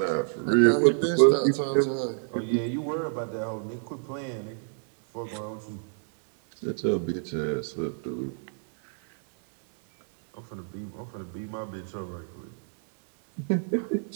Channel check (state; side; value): silent; left; 59 dB below the other